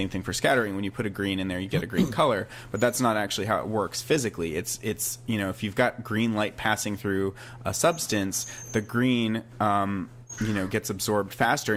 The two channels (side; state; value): both; identical; correlation 1.00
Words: thing for scattering. When you put a green in there, you get a green color. But that's not actually how it works physically. It's if you've got green light passing through a substance, the green gets absorbed faster,